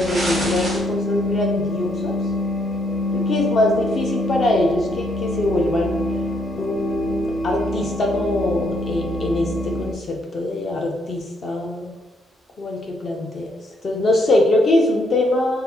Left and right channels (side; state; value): both; normal; correlation 0.72